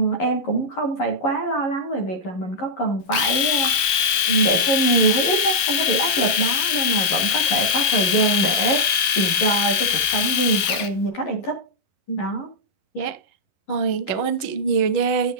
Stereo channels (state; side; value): late; right; 12 ms